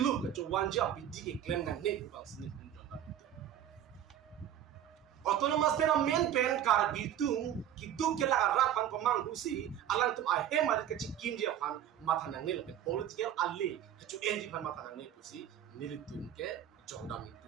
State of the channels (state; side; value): quieter; left; 10.6 dB